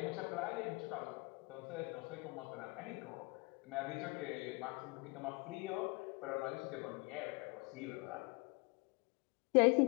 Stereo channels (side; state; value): right; quieter; 28.4 dB